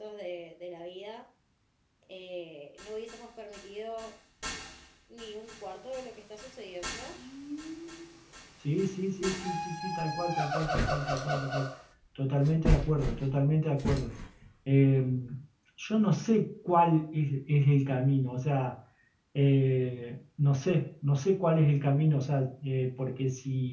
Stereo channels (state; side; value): identical; both; correlation 1.00